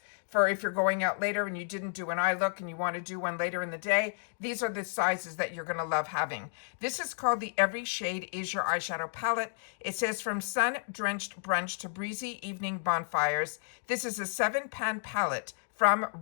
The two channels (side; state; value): right; silent; digital silence